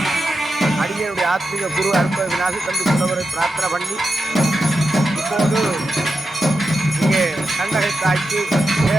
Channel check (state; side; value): normal; both; correlation 0.89